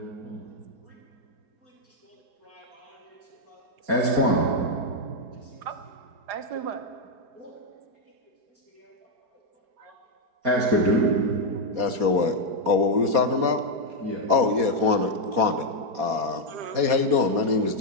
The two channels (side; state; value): left; late; 4.2 ms